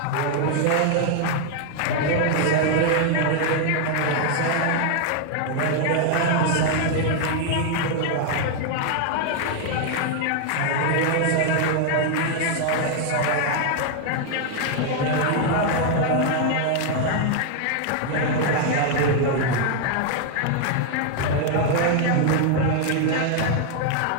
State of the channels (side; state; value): both; different; correlation 0.00